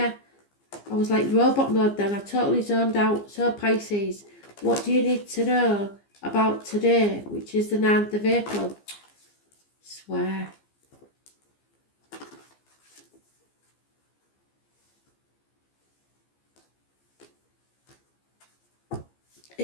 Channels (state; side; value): late; right; 15 ms